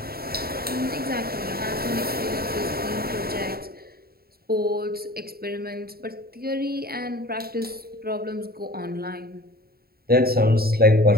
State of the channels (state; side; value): late; left; 0.45 ms